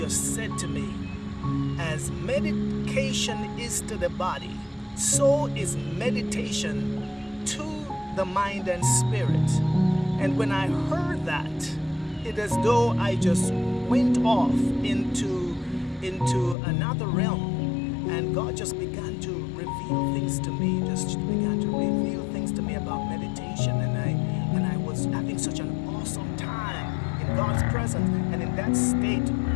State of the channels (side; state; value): right; drops out; at 16.6 s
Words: said to me, as medication is to the body, so is meditation to the mind and spirit. And when I heard that, it is as though I just went off into another realm, and God just began to reveal things to me, just began to reveal things to me about meditation, and I was having such an awesome time in God's presence and in that state